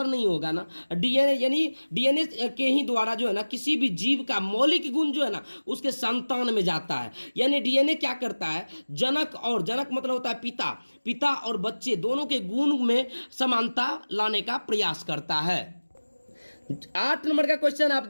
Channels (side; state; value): both; inverted; correlation -1.00